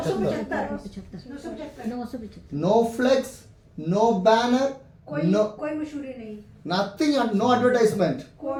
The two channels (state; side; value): identical; both; correlation 1.00